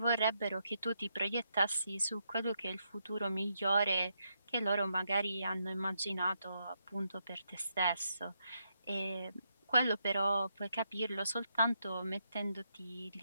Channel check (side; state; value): both; inverted; correlation -0.80